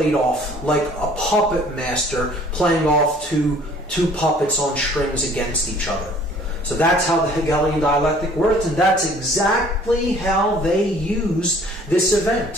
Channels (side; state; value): both; normal; correlation 0.54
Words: off like a puppet master playing off two puppets on strings against each other. So that's how the Hegelian dialectic works, and that's exactly how they used this